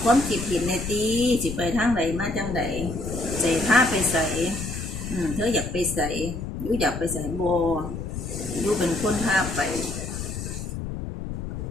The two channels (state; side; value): noise; left; rumble, 6 dB below the sound